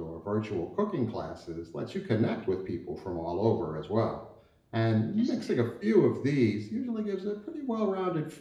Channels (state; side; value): identical; both; correlation 1.00